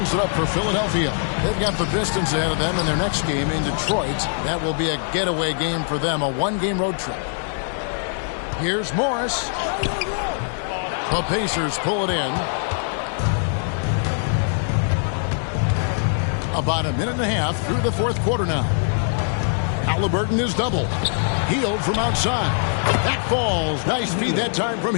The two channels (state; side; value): silent; right; 64 dB below the other